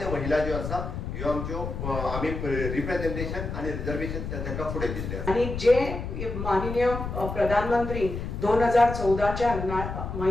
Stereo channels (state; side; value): noise; left; rumble, 5 dB below the sound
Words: महिला ज्यो आसा ह्यो आमच्यो आमी रिप्रेझेंटेशन आणि रिझर्वेशन तांकां फुडें दिल्ले आसा. आणि जे माननीय प्रधानमंत्री 2014च्या